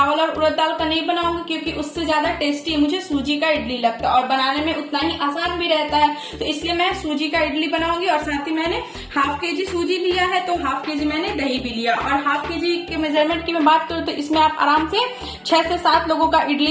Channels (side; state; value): both; identical; correlation 1.00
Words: और उड़द दाल का नहीं बनाऊंगी, क्योंकि उससे ज्यादा टेस्टी मुझे सूजी का इडली लगता है और बनाने में उतना ही आसान भी रहता है। तो इसलिए मैं सूजी का इडली बनाऊंगी। और साथ ही मैंने हाफ केजी सूजी लिया है, तो हाफ केजी मैंने दही भी लिया। और हाफ केजी के मेजरमेंट की मैं बात करूँ तो इसमें आप आराम से 6 से 7 लोगों का